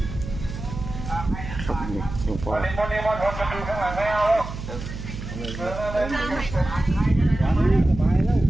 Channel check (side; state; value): right; noise; hum, 9 dB below the sound